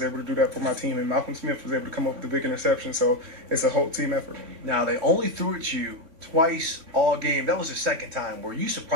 able to do that for my team. And Malcolm Smith was able to come up with the big interception, so it's a whole team effort. Now they only threw at you twice all game. That was the second time. Were you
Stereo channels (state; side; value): late; left; 3.5 ms